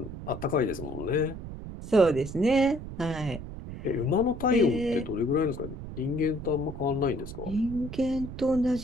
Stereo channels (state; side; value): noise; right; rumble, 10 dB below the sound